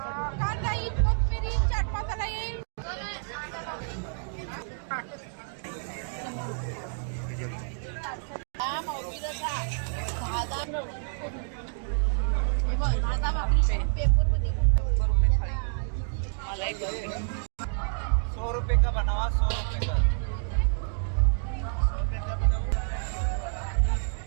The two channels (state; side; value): silent; left; digital silence